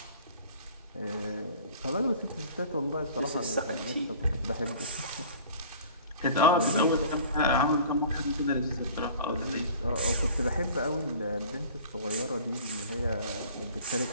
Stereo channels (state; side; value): inverted; both; correlation -0.46